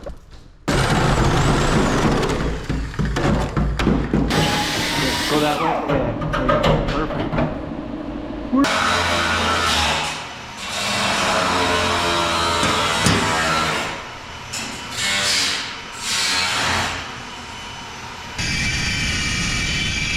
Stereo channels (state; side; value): identical; both; correlation 1.00